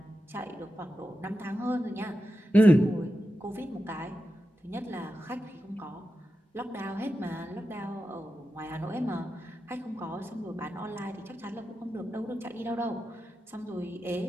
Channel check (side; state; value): both; normal; correlation 0.90